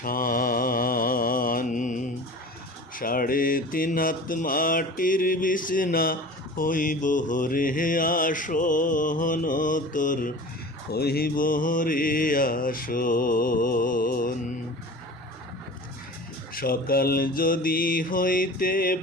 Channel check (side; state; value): both; normal; correlation 0.38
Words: 3.5 হাত মাটির বিছনা হইব রে আসন, তোর হইব রে আসন। সকাল যদি হইতে